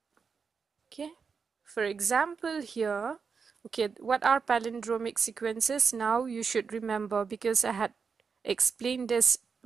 Okay, for example here, okay, what are palindromic sequences? Now you should remember, because I had explained this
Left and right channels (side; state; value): left; quieter; 5.6 dB